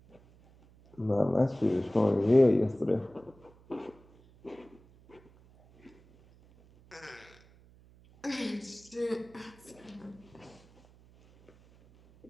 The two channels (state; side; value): noise; right; hum, 27 dB below the sound